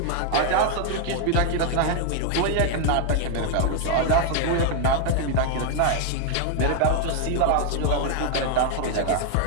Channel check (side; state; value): both; different; correlation 0.00